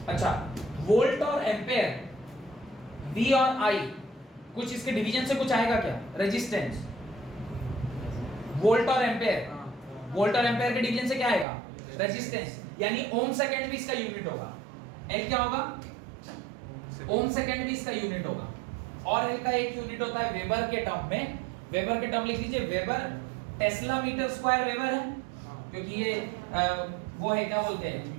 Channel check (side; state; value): left; drops out; at 11.5 s